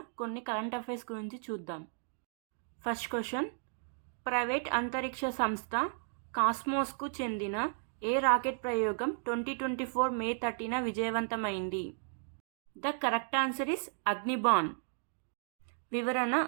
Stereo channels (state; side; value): silent; left; digital silence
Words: కొన్ని కరెంట్ అఫైర్స్ గురించి చూద్దాం. ఫస్ట్ క్వశ్చన్, ప్రైవేట్ అంతరిక్ష సంస్థ కాస్మోస్కు చెందిన ఏ రాకెట్ ప్రయోగం 2024 మే 30న విజయవంతమైంది? The correct answer is Agnibaan. వివరణ: